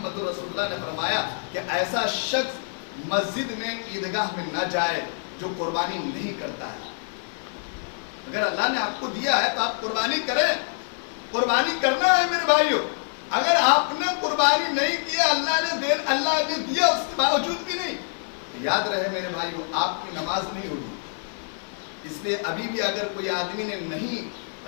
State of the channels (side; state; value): right; silent; 57 dB below the other